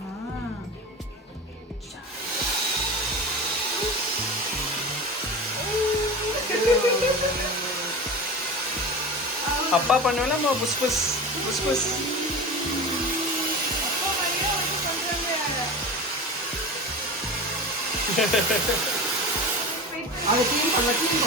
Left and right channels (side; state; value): both; normal; correlation 0.30